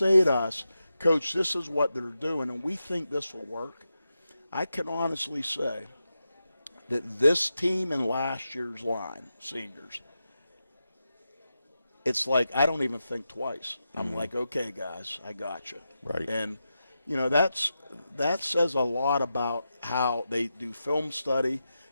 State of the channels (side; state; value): both; inverted; correlation -0.89